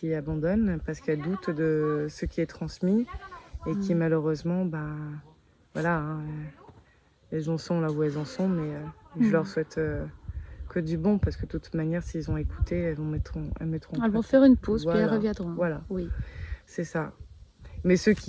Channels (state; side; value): identical; both; correlation 1.00